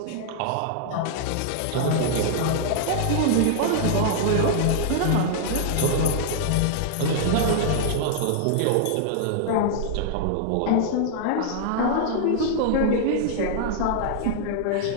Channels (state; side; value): different; both; correlation -0.01